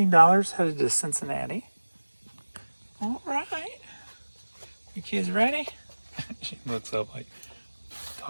headed to Cincinnati. All right. You kids ready? She looks up like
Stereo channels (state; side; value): inverted; both; correlation -1.00